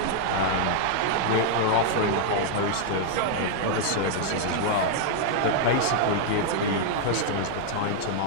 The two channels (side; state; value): both; different; correlation -0.01